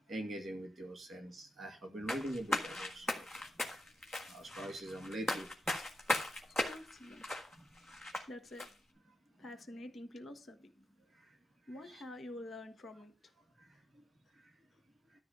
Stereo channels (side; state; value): both; normal; correlation 0.86